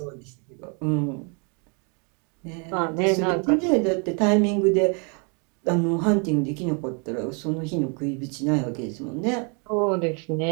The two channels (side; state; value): left; quieter; 36.3 dB